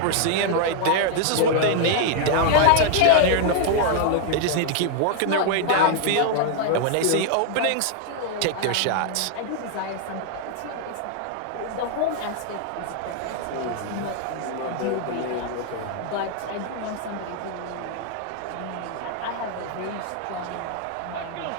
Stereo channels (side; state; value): both; different; correlation 0.00